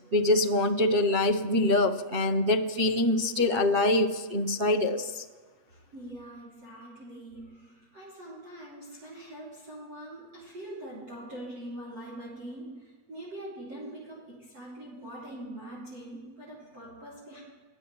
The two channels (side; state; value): left; late; 8.2 ms